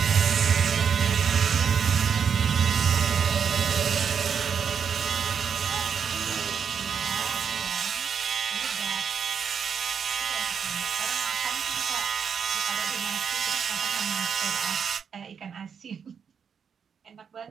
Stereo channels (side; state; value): left; quieter; 6.9 dB